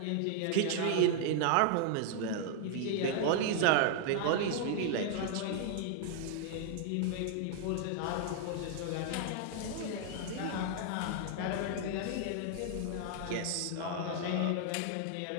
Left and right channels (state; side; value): different; both; correlation -0.01